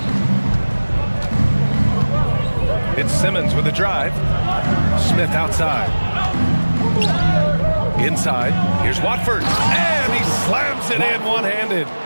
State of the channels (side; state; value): both; inverted; correlation -1.00